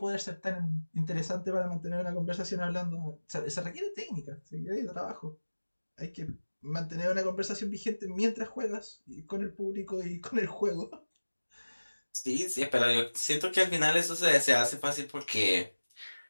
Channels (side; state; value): both; inverted; correlation -1.00